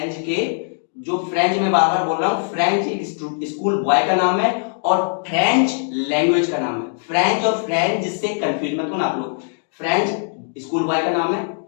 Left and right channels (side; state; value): right; silent; digital silence